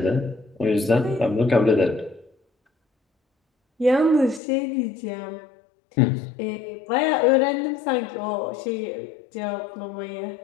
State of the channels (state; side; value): drops out; right; at 4.4 s